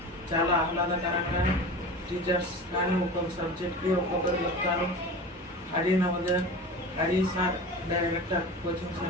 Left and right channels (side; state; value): both; normal; correlation 0.33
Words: చాలా ఆహ్లాదకరంగా, టీచర్స్ కానీ ఒక్కొక్క సబ్జెక్ట్కి ఒక్కొక్కరు చెప్తారు. Hari sir director, coaching